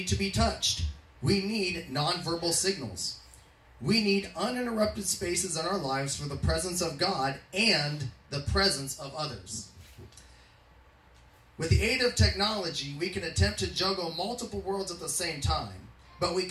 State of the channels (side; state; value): both; identical; correlation 1.00